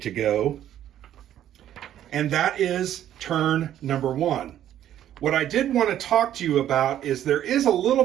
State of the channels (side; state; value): left; quieter; 11.4 dB